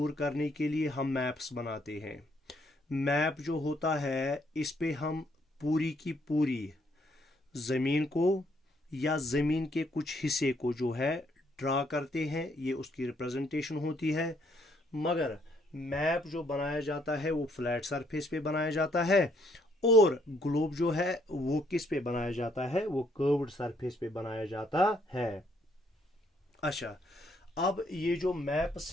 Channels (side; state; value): both; normal; correlation 0.69